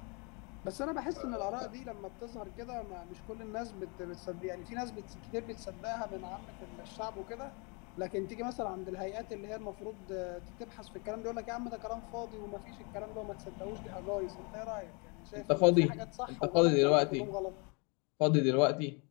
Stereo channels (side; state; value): right; quieter; 32.5 dB